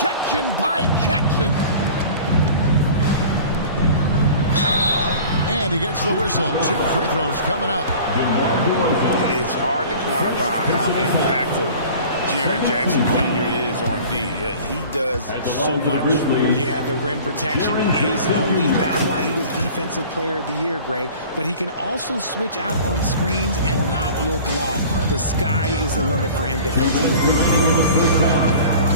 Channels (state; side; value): inverted; both; correlation -0.43